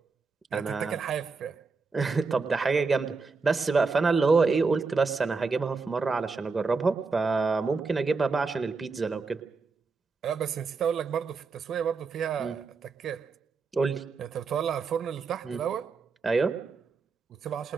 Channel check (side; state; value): left; quieter; 4.5 dB